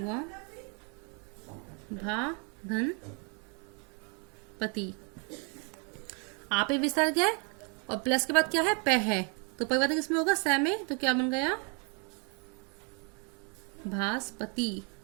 भा धन पति, आ पे विसर्ग है और प्लस के बाद क्या है? प है, तो परिवर्तन किसमें होगा? स में। तो क्या बन गया? भास्पति।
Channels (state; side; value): quieter; left; 36.1 dB